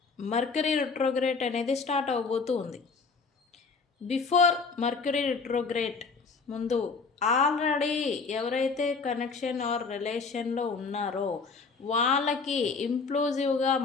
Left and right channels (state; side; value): quieter; right; 4.7 dB